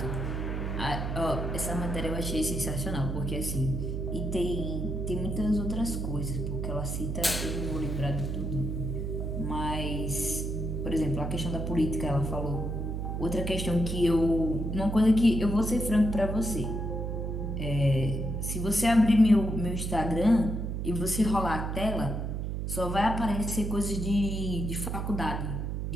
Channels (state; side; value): noise; right; hum, 2 dB below the sound